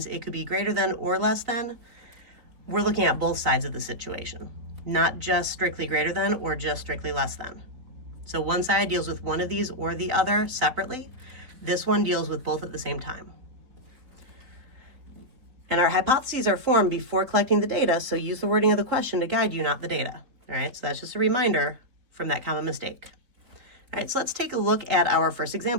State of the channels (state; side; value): late; left; 4.1 ms